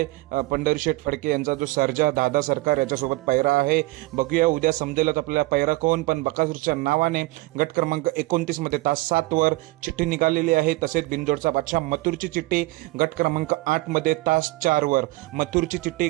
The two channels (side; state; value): left; quieter; 20.9 dB